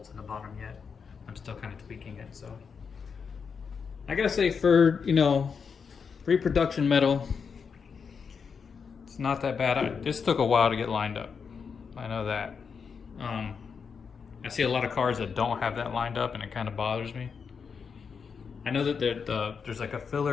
in the bottom yet. I'm still kind of tweaking it. So I got to say, for, reproduction metal, it's not that bad. This took a while to get lined up. I know that. I see a lot of cars that don't have that lined up, and it kind of bothers me. I know that there's like a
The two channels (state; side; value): quieter; right; 6.0 dB